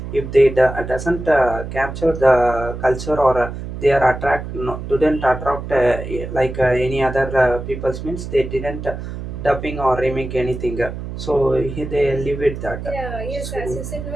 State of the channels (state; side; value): noise; right; hum, 8 dB below the sound